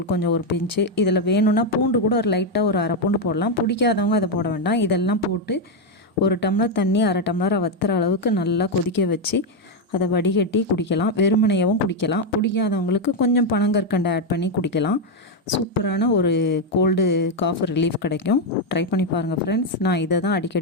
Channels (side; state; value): both; normal; correlation 0.04